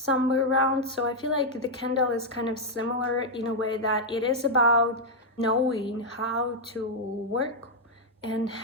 around. So I feel like the candle is kind of similar in a way that it is about knowing how to work and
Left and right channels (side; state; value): both; normal; correlation -0.02